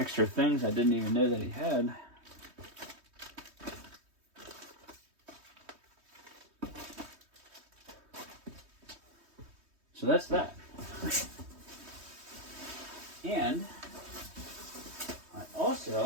things I didn't even know that he had. So that's that. And I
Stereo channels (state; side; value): late; left; 3.2 ms